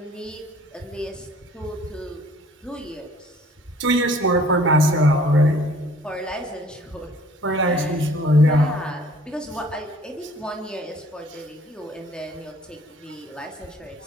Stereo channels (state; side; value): normal; both; correlation 0.54